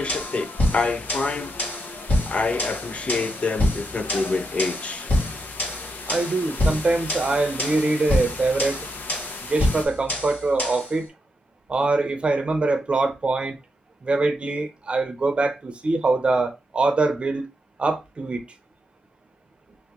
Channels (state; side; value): normal; both; correlation 0.82